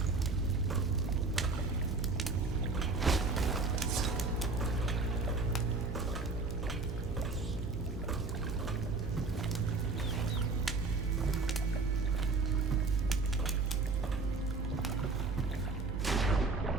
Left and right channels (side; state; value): left; quieter; 3.8 dB